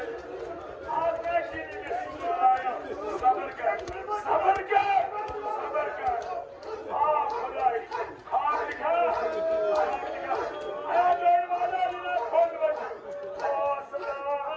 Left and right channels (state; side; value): identical; both; correlation 1.00